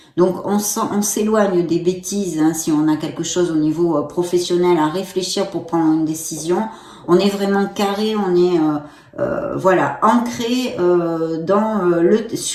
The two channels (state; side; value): identical; both; correlation 1.00